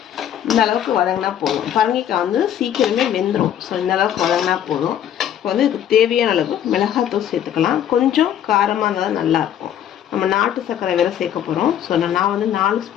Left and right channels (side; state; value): right; quieter; 10.2 dB